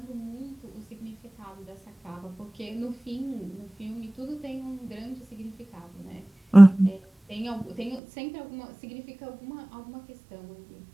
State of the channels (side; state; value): left; drops out; at 8.0 s